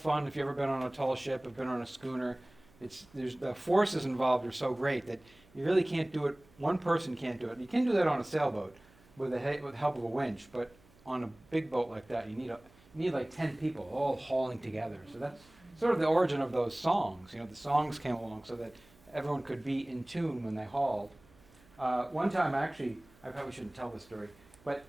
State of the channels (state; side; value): noise; right; hum, 27 dB below the sound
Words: If you've ever been on a tall ship, have been on a schooner, there's the forces involved are so great that you really can't do it. One person can't do it. You can do that on a sailboat with the help of a winch, but on a big boat like that, you need like 10 people all hauling together. So that's sort of the origin of those songs. You know, the songs came along so that everyone could be in tune when they hauled. One time, actually, I probably shouldn't tell this story, but